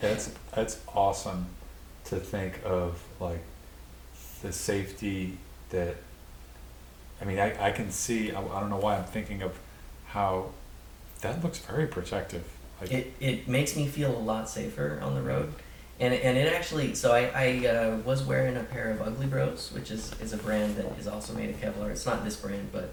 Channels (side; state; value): both; identical; correlation 1.00